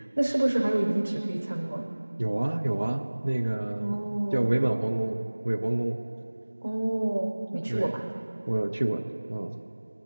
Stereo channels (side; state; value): both; inverted; correlation -1.00